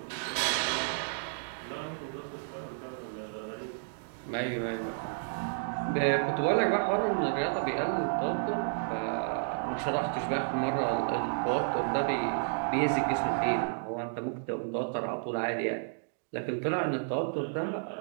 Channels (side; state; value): left; silent; digital silence